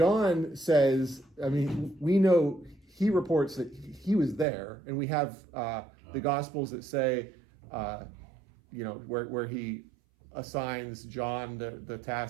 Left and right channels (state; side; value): drops out; left; at 4.5 s